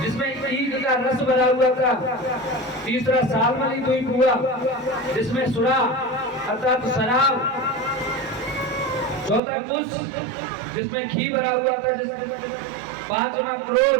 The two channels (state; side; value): drops out; left; at 9.4 s